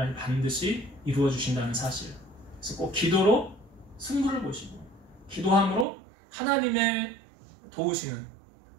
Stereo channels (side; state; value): left; drops out; at 5.9 s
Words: 반드시 이루어 주신다는 사실. 그래서 꼭 기도로 승부를 보시고 기도함으로 하나님의 도우시는